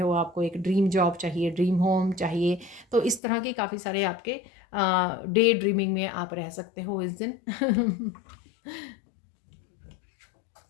आपको एक ड्रीम जॉब चाहिए, ड्रीम होम चाहिए। तो इस तरह के काफ़ी सारे आपके डे ड्रीमिंग में आप रह सकते हो इस दिन।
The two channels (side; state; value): right; drops out; at 3.2 s